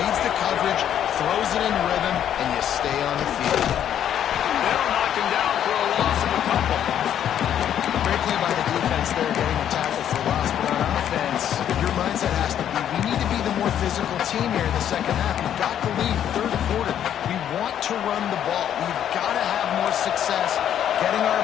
the coverage, throws it in rhythm, and you stay on the field. They'll knock him down for a loss of a couple. Great play by the defense there, getting a tackle for loss. But on offense, your mindset has to be, we need to be the more physical team here in the second half. We've got the lead, 3rd quarter. We want to run the ball. We've got to have more success getting our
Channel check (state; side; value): quieter; right; 10.0 dB